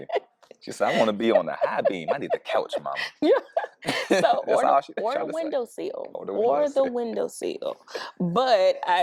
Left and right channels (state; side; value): identical; both; correlation 1.00